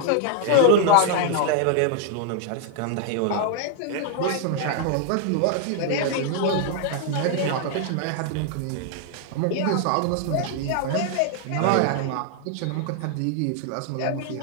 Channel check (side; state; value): both; different; correlation 0.00